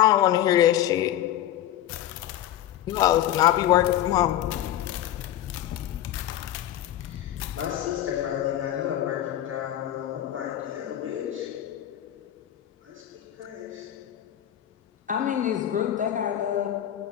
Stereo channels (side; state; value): right; quieter; 12.3 dB